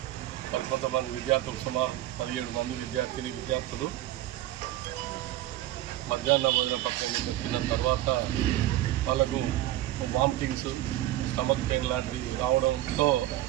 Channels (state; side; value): quieter; left; 14.7 dB